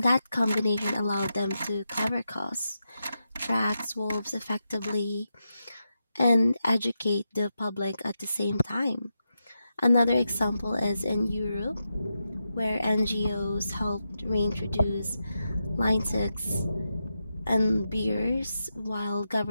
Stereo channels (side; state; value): both; inverted; correlation -0.88